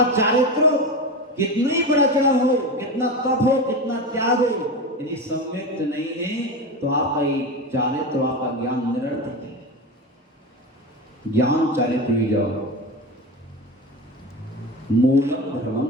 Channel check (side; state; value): both; normal; correlation 0.23